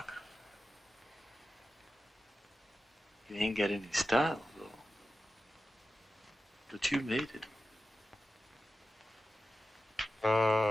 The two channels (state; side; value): normal; both; correlation 0.92